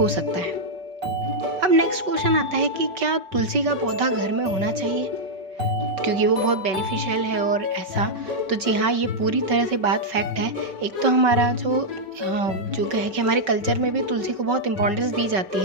सकता है। अब नेक्स्ट क्वेश्चन आता है कि क्या तुलसी का पौधा घर में होना चाहिए क्योंकि वो बहुत बेनिफिशियल है और ऐसा। तो जी हाँ, ये पूरी तरह से बात फैक्ट है। एक तो हमारा जो है कि हमारे कल्चर में भी तुलसी को बहुत इंपॉर्टेंस दी जाती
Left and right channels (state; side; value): late; left; 5.3 ms